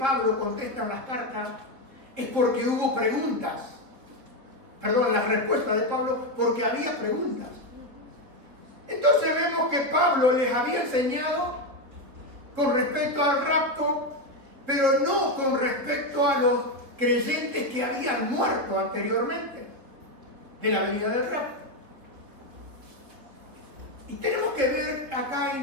contesta en las cartas es porque hubo preguntas. Perdón, las respuestas de Pablo, porque había preguntas. Entonces vemos que Pablo les había enseñado con respecto al rapto, pero no con respecto a los creyentes que habían muerto anteriormente de la venida del rapto. Y tenemos que ver acá,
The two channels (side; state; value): left; late; 3.5 ms